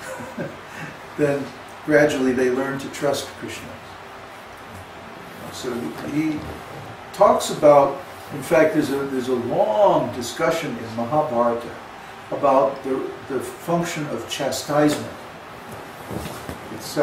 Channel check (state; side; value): identical; both; correlation 1.00